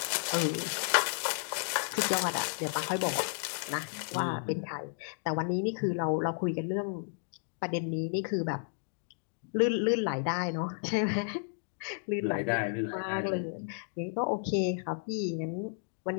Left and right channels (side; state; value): right; silent; digital silence